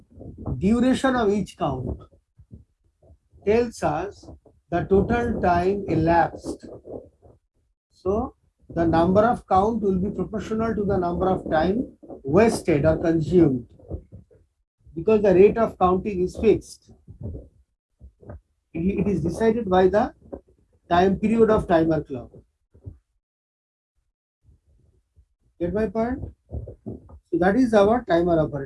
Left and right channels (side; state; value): both; identical; correlation 1.00